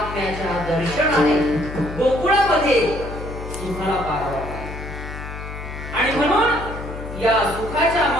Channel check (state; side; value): noise; left; hum, 9 dB below the sound